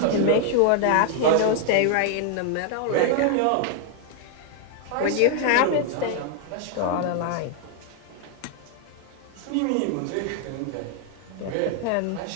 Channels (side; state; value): both; different; correlation 0.00